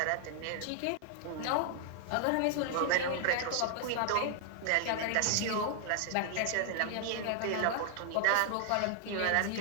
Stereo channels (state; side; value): different; both; correlation 0.00